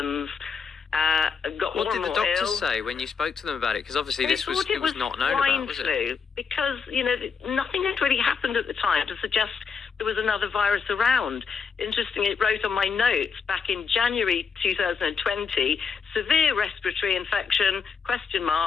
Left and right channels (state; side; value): quieter; right; 5.8 dB